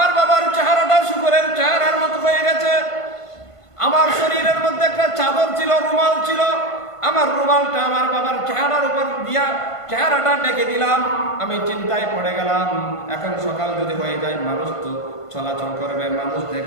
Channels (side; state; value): right; late; 1.5 ms